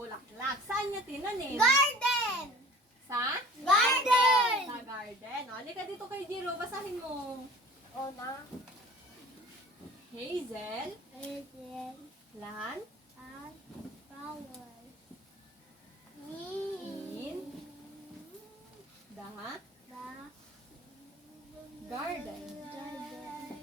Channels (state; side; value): normal; both; correlation 0.45